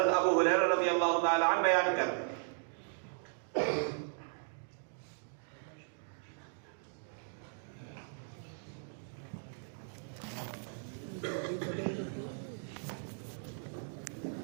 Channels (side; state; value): left; silent; digital silence